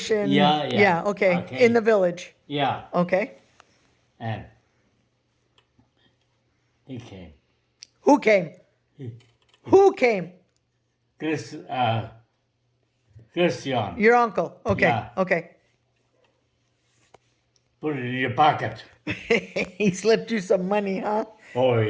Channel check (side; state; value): both; identical; correlation 1.00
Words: Yeah. Yeah, okay. In the village. Yeah. Okay. And he came. Who came? Who came? Christian. Your uncle. Okay. Yeah. Okay. Put it in your pocket. He slipped you some money, huh? Oh,